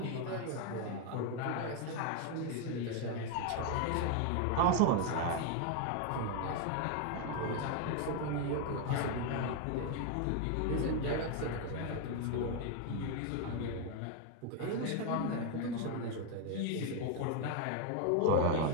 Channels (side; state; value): both; different; correlation 0.01